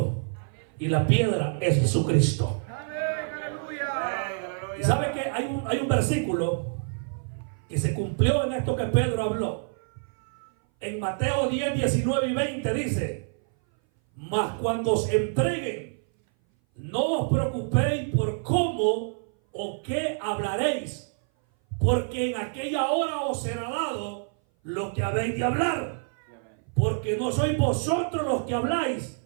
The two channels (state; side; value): silent; left; 58 dB below the other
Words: Y la piedra es Jesucristo. Y sabe que hay un versículo que se cumplió en esto que Pedro habló. En Mateo 10, 19 y 20 dice: mas cuando os entreguen, no os preocupéis por cómo o qué hablaréis, porque en aquella hora os será dado lo que habéis de hablar. Porque no sois vosotros los que habláis,